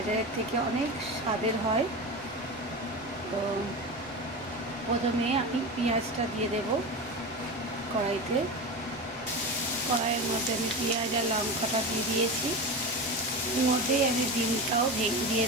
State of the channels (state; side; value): normal; both; correlation 0.24